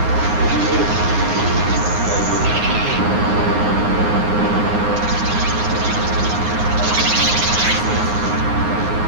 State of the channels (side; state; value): left; late; 9.6 ms